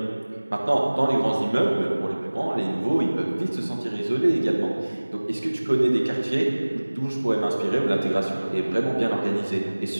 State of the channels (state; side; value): inverted; both; correlation -1.00